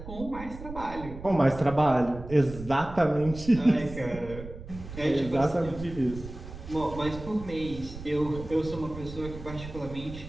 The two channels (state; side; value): noise; right; rumble, 12 dB below the sound